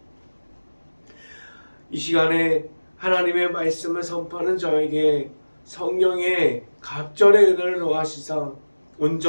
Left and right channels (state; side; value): inverted; both; correlation -1.00